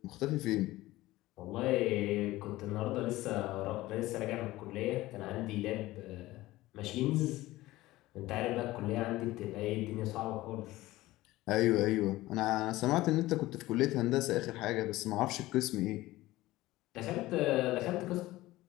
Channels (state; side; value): quieter; right; 17.7 dB